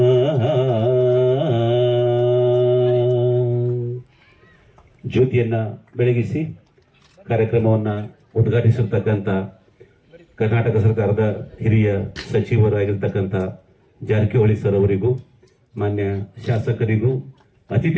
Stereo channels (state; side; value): identical; both; correlation 1.00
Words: ಜ್ಯೋತಿಯನ್ನ ಬೆಳಗಿಸಿ ಕಾರ್ಯಕ್ರಮವನ್ನು ಉದ್ಘಾಟಿಸಿರ್ತಕ್ಕಂಥ ಕರ್ನಾಟಕ ಸರ್ಕಾರದ ಹಿರಿಯ ಸಚಿವರಾಗಿರ್ತಕ್ಕಂಥ ಜಾರಕಿಹೊಳಿ ಸರ್ ಅವರಿಗೂ, ಮಾನ್ಯ ಶಾಸಕರಿಗೂ,